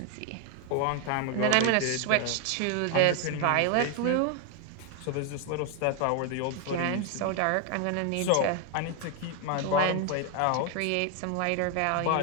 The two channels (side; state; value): both; different; correlation 0.01